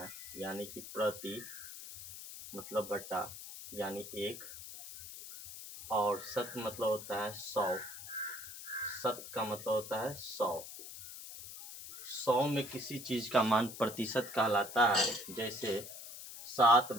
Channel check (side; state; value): left; noise; hiss, 12 dB below the sound